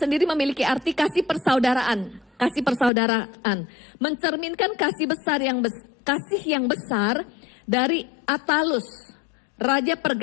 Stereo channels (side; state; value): right; drops out; at 2.9 s